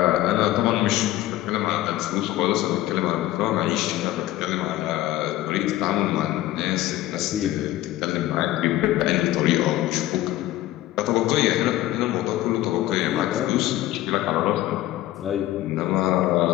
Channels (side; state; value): right; quieter; 15.3 dB